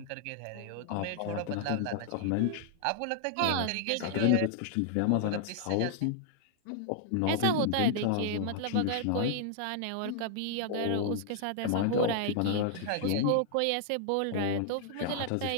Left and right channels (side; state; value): both; different; correlation -0.01